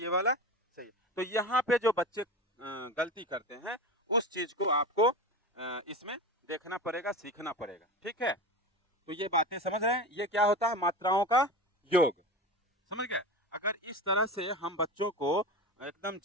वाला सही है। तो यहाँ पे जो बच्चे गलती करते हैं उस चीज को आपको इसमें देखना पड़ेगा, सीखना पड़ेगा। ठीक है। तो ये बातें समझ रहे हैं? ये क्या होता है? मात्राओं का योग। समझ गए? अगर इस तरह से हम बच्चों को एकदम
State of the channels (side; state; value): both; normal; correlation 0.27